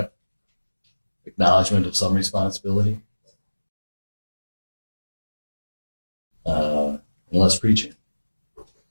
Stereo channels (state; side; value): inverted; both; correlation -1.00